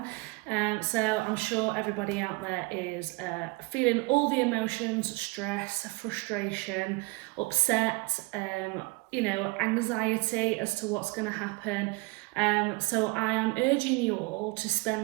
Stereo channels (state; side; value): quieter; left; 25.9 dB